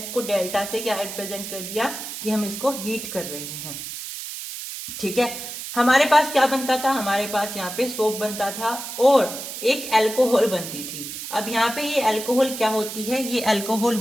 डेल्टा से क्या रिप्रेजेंट कर दिया कि हम इसको हीट कर रहे हैं। ठीक है, हमारे पास क्या बनता था, हमारे पास यहाँ पे सोप बनता था और एक अल्कोहल बनती थी। अब यहाँ पे ये अल्कोहल क्या होती है, ये अल्कोहल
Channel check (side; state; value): right; noise; hiss, 8 dB below the sound